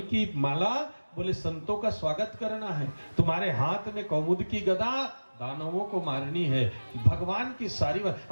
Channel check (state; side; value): inverted; both; correlation -1.00